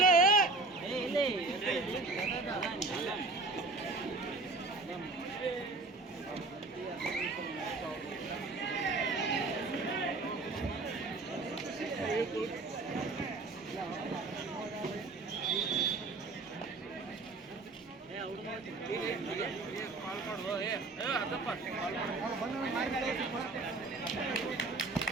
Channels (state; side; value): quieter; left; 3.5 dB